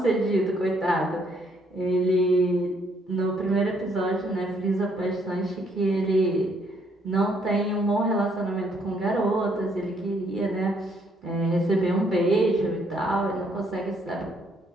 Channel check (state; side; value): normal; both; correlation 0.69